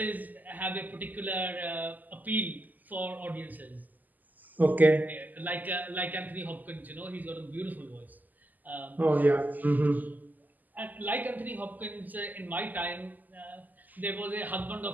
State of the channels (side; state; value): left; late; 0.083 ms